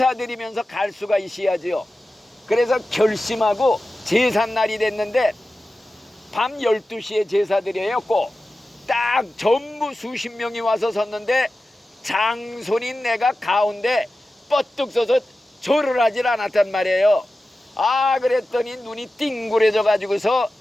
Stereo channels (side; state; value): both; normal; correlation 0.94